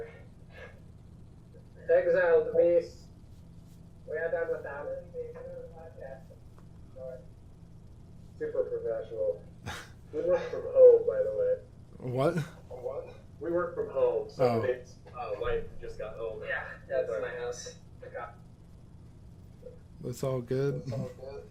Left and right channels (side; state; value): both; identical; correlation 1.00